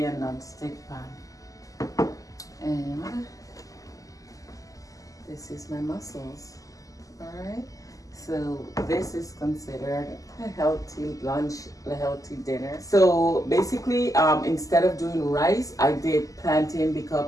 a non-stick pan. And this is my mussels. All right, so this is considered a healthy lunch, a healthy dinner. So basically, instead of doing rice, I did plantain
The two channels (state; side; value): late; right; 0.17 ms